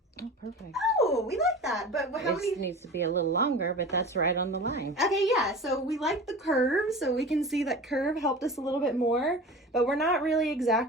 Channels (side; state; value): both; normal; correlation 0.35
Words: Oh, perfect. Oh, we like that. But how many? It needs to be a little longer, but that's right on the line. Okay, yeah. So we like the curve. So we can see that curve helped us a little bit more. But we're not really